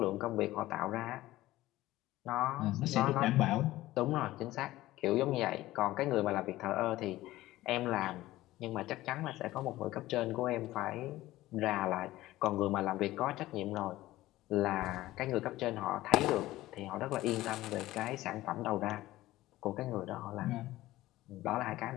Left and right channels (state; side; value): quieter; right; 16.5 dB